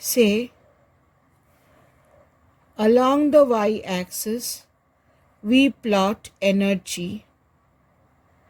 along the y-axis we plot energy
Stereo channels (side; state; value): both; identical; correlation 1.00